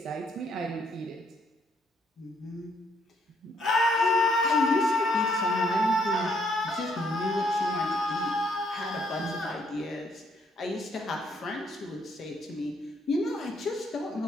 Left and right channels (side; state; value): both; normal; correlation 0.70